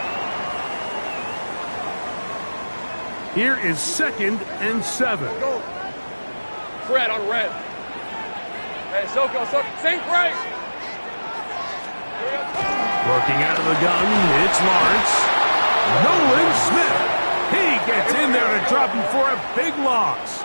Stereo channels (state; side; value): inverted; both; correlation -1.00